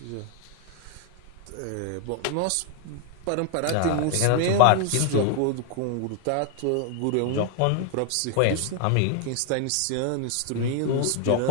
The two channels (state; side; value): different; both; correlation 0.01